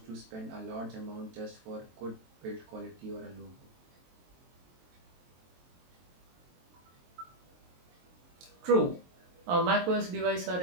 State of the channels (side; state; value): left; late; 23 ms